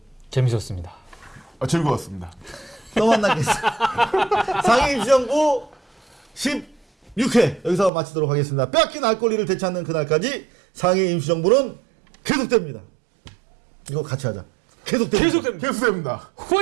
재밌었습니다. 즐거웠습니다. 또 만나겠습니다. 상임시정부 16회 여기서 마치도록 하겠습니다. 빼앗긴 알 권리를 되찾는 그날까지 상임시정부는 계속됩니다. 이거 같이 하자. 계속됩니다. 계속됩니다.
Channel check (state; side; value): drops out; left; at 7.9 s